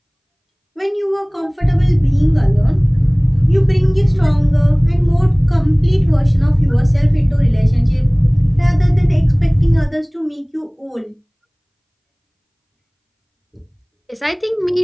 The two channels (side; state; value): both; identical; correlation 1.00